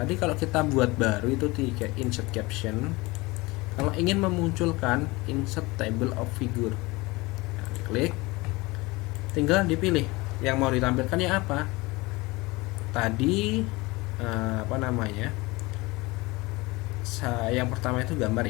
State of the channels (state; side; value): quieter; right; 22.9 dB